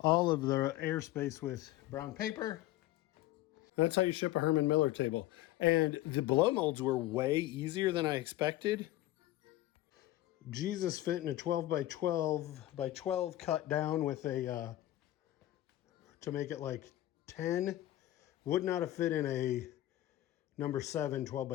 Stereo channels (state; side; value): quieter; right; 15.2 dB